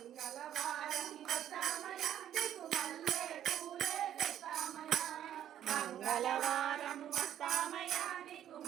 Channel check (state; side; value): quieter; left; 10.6 dB